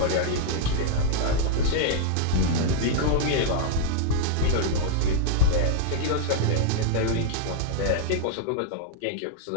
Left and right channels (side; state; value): both; different; correlation -0.01